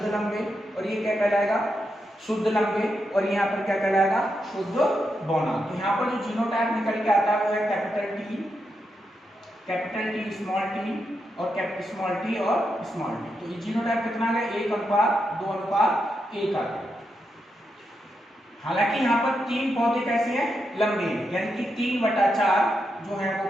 लंबे, और ये क्या कहलाएगा, शुद्ध लंबे, और यहाँ पर क्या कहलाएगा, शुद्ध बौना। तो यहाँ पर जो जीनोटाइप निकल के आता है वो है कैपिटल T स्मॉल t और स्मॉल t और स्मॉल t। तो ये जीनोटाइप कितना है, 1:2:1 आ गया। हालांकि यहाँ पर 3 पौधे कैसे हैं, लंबे, यानी कि 3/4 जो है वो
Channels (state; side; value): normal; both; correlation 0.84